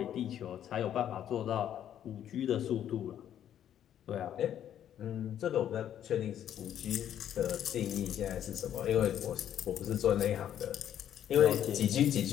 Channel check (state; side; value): quieter; right; 10.4 dB